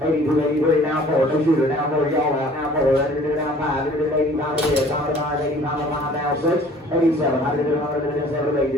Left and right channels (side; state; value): both; normal; correlation 0.52